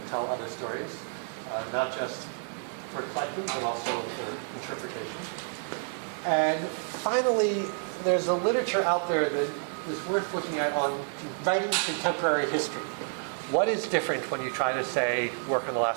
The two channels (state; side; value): silent; left; 58 dB below the other